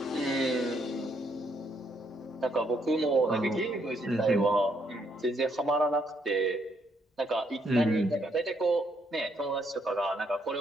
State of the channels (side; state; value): both; normal; correlation 0.74